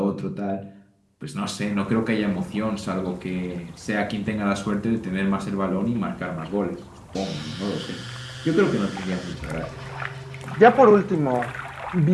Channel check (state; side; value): identical; both; correlation 1.00